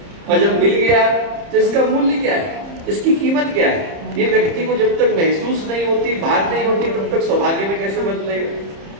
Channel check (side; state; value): left; late; 30 ms